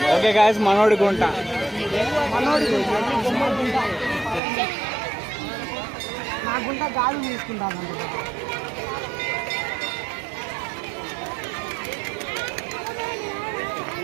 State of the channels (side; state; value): left; drops out; at 4.4 s